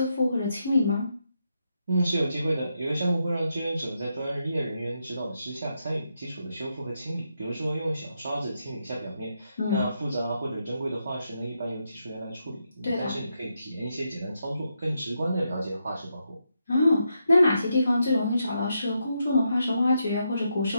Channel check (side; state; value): both; inverted; correlation -0.82